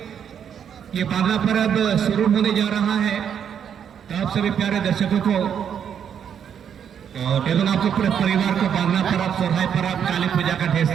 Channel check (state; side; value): quieter; left; 8.3 dB